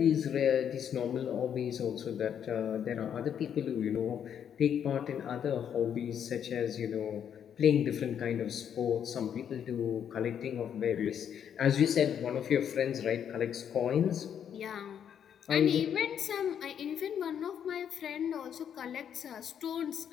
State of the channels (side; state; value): right; quieter; 8.7 dB